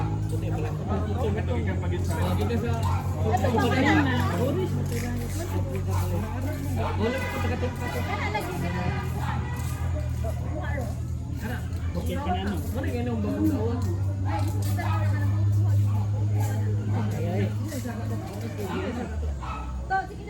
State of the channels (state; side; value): identical; both; correlation 1.00